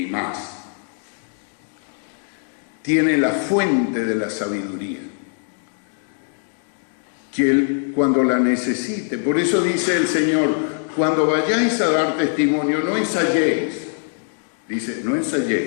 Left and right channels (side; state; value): right; silent; 64 dB below the other